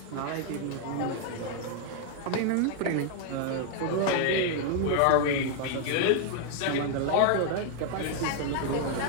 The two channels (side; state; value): both; different; correlation 0.00